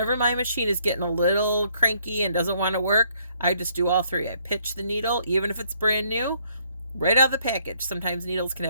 my machine is getting a little cranky and doesn't want to work, I just do all three. I pitch the needle, even if it's brand new, right out of the package. Sometimes needles can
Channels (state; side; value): inverted; both; correlation -0.68